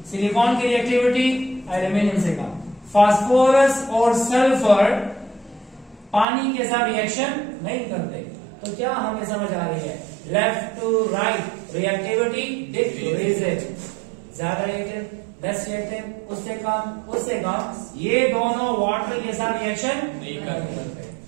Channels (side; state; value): left; drops out; at 6.2 s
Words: सिलिकॉन की रिएक्टिविटी एल्यूमिनियम से कम। फास्फोरस और सल्फर पानी के साथ रिएक्शन नहीं करते। तो क्या हमें समझ आ रही है? Left to right reactivity decreases, ज्यादा रिएक्टिव, लेस रिएक्टिव, उससे कम। ये दोनों वाटर के साथ रिएक्शन नहीं करते।